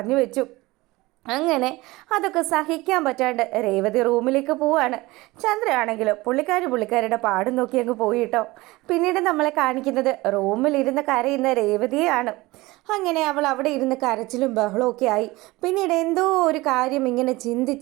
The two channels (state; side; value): quieter; left; 20.7 dB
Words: വെച്ചു. അങ്ങനെ അതൊക്കെ സഹിക്കാൻ പറ്റാണ്ട് രേവതി റൂമിലേക്ക് പോവാണ്. ചന്ദ്രയാണെങ്കിലോ പുള്ളിക്കാരുടെ പാടും നോക്കി അങ്ങ് പോയിട്ടോ. പിന്നീട് നമ്മളെ കാണിക്കുന്നത് റൂമിലിരുന്ന് കരയുന്ന രേവതിയെയാണ്. അങ്ങനെ അവൾ അവിടെ ഇരുന്ന് കരച്ചിലും ബഹളമൊക്കെ ആയി. പിന്നീട് എന്തോ ഒരു കാര്യം ഇങ്ങനെ